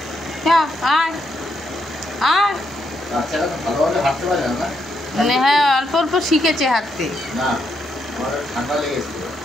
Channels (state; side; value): normal; both; correlation 0.78